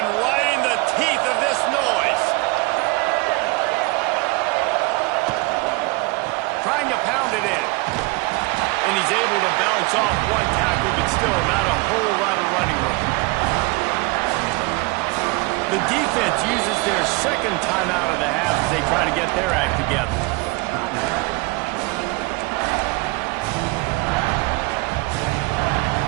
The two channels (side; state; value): left; quieter; 25.0 dB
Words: right in the teeth of this noise. Trying to pound it in. And he's able to bounce off one tackle, but still not a whole lot of running room. The defense uses their 2nd timeout of the half as they try to get their act together.